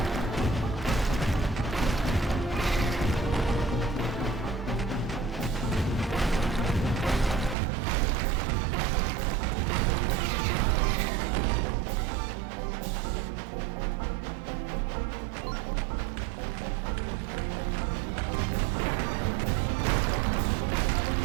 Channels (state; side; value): drops out; left; at 7.6 s